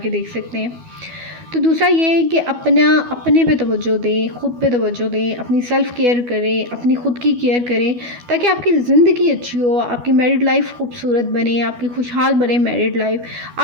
देख सकते हैं। तो दूसरा ये है कि अपने पे तवज्जो दें, ख़ुद पे तवज्जो दें, अपनी सेल्फ़ केयर करें, अपनी ख़ुद की केयर करें, ताकि आपकी ज़िंदगी अच्छी हो, आपकी मैरिड लाइफ खूबसूरत बने, आपकी खुशहाल बने मैरिड लाइफ।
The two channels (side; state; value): left; late; 12 ms